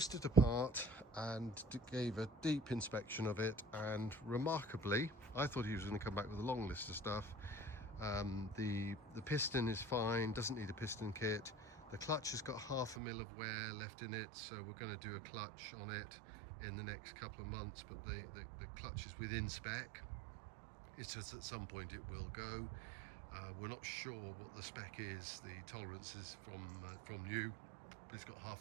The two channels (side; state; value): left; drops out; at 13.0 s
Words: it apart and gave a deep inspection of it, and remarkably, I thought he was going to come back with a long list of stuff. The piston is fine, doesn't need a piston kit. The clutch has got 0.5 mil of wear left in it, so we're going to do a clutch on it in the next couple of months, but the clutch is within spec. It's just at some point it will go. We're not sure what the spec is, the tolerance is from new, but it's got